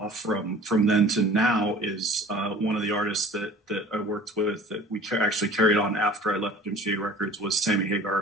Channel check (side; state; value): both; normal; correlation 0.45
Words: from then to now is one of the artists that I worked with that we actually carried on after I left MCA Records was Sammy